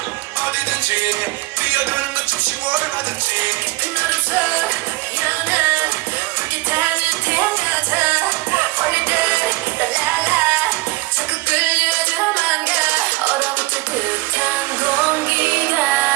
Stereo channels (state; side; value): quieter; left; 21.3 dB